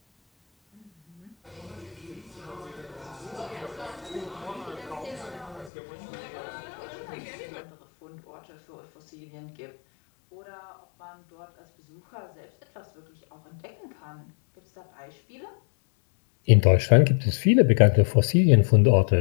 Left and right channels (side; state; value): right; drops out; at 5.7 s